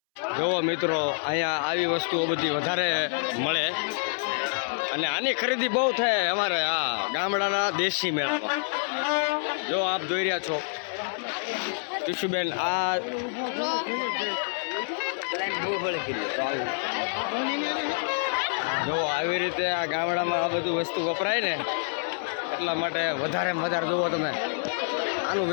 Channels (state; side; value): silent; right; 60 dB below the other